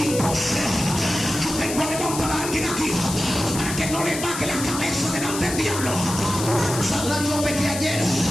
Yo tengo a levantar a alguien aquí para que no le baje la cabeza delante del diablo. Saldrá yo pequé ayer.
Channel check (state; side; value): noise; left; hiss, 6 dB below the sound